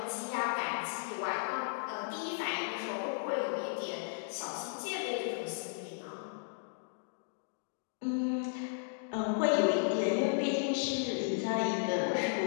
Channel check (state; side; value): silent; right; digital silence